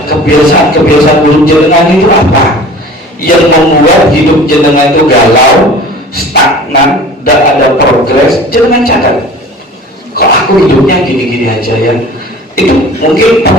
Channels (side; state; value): both; normal; correlation 0.42